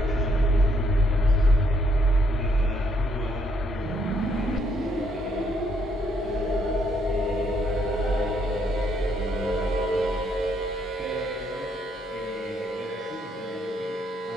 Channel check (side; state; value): both; normal; correlation 0.72